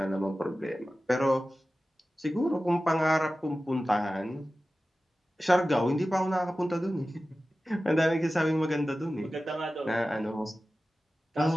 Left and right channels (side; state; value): both; normal; correlation 0.95